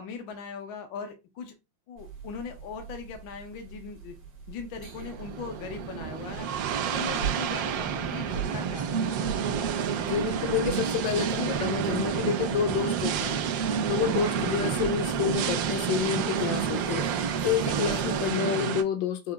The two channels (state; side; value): late; right; 5.7 ms